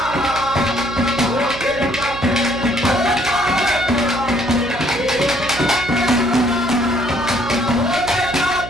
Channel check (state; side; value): noise; right; hum, 12 dB below the sound